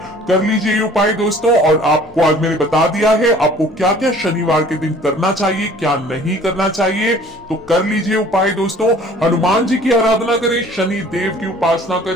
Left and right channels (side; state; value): both; normal; correlation 0.51